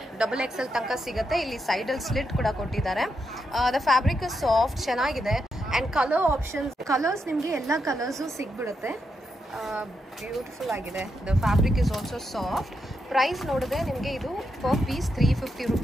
XXL ತನಕ ಸಿಗುತ್ತೆ. ಇಲ್ಲಿ ಸೈಡ್ ಅಲ್ಲಿ ಸ್ಲಿಟ್ ಕೂಡ ಕೊಟ್ಟಿದ್ದಾರೆ. ದ ಫ್ಯಾಬ್ರಿಕ್ ಸಾಫ್ಟ್, ಚೆನ್ನಾಗಿದೆ. ಅಂಡ್ ಕಲರ್ ಆಪ್ಷನ್ಸ್, ಕಲರ್ಸ್ ನಿಮಗೆ ಎಲ್ಲ ಕಲರ್ಸು ಸಿಗ್ಬಿಡುತ್ತೆ. ಬ್ಯೂಟಿಫುಲ್ ಆಗಿದೆ. The fabric is also soft. Price ನೋಡಿದ್ರೆ ನಿಮಗೆ ಇದು ಪರ್ ಪೀಸ್ 350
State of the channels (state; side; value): normal; both; correlation 0.83